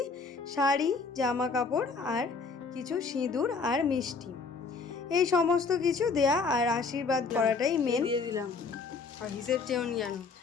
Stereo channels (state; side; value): quieter; right; 4.6 dB